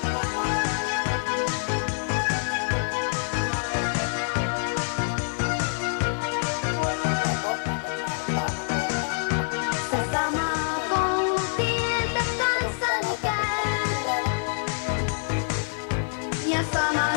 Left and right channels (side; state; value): right; silent; digital silence